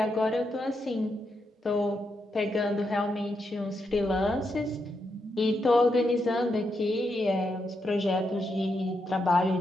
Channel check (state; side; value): normal; both; correlation 0.83